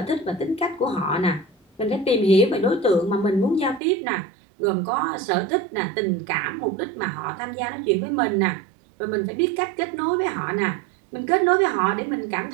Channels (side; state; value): left; drops out; at 3.8 s